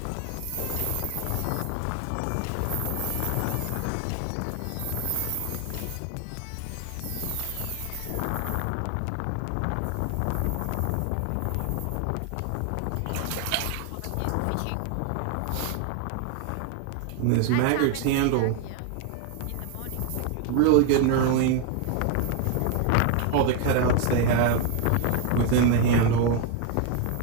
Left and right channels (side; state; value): both; different; correlation 0.01